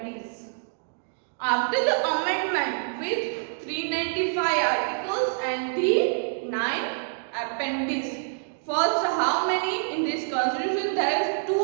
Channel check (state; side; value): silent; left; digital silence